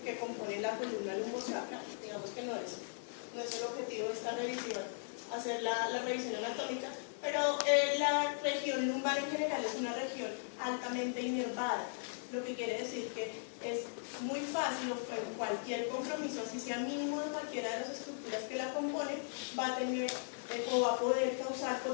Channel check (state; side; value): silent; right; digital silence